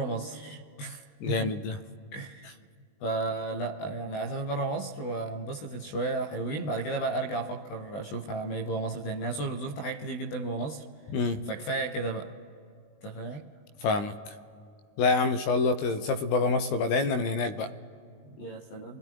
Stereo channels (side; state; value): right; late; 20 ms